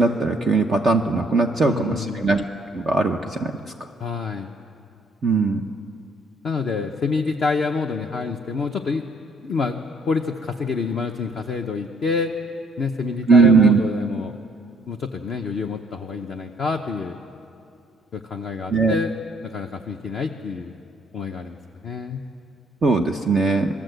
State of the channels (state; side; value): normal; both; correlation 0.64